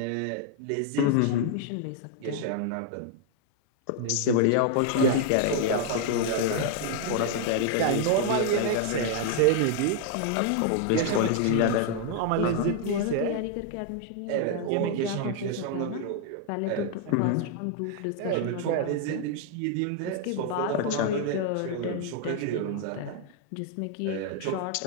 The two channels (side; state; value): both; different; correlation 0.00